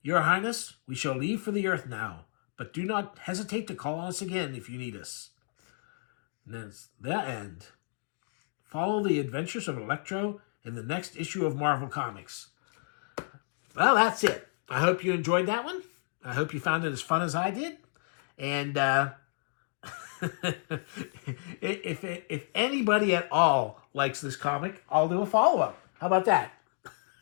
Your Highness, we shall leave for the Earth now, but do not hesitate to call on us again if you need us. And that's the end. Follow the adventures of ELECTRO in the next issue of Marvel Comics. Well, that's it. I hope you enjoyed that one. I hope you found it as fun as I did. And if anybody at all likes this comic, I'll do a follow-up. How about that?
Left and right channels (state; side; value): silent; right; digital silence